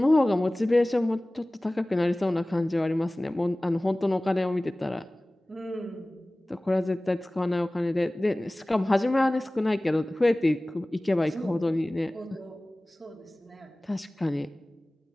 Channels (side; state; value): both; normal; correlation 0.98